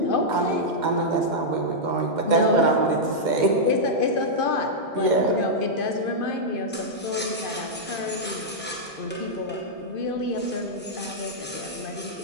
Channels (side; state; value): both; normal; correlation -0.07